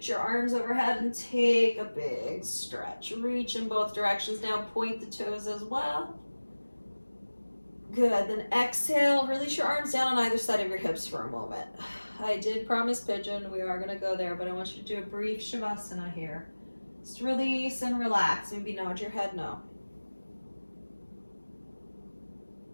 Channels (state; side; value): inverted; both; correlation -1.00